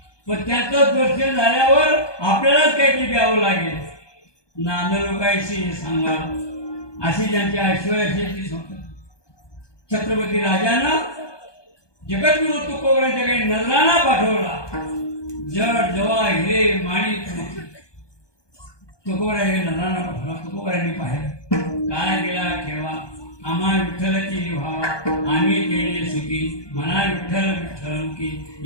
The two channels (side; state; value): right; late; 1.2 ms